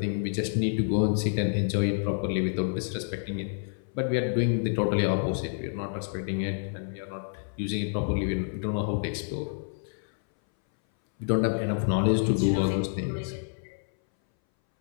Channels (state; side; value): silent; right; 59 dB below the other